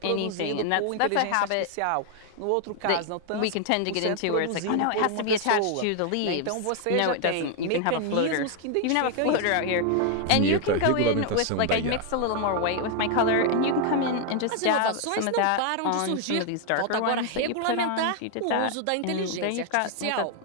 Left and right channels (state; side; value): different; both; correlation 0.00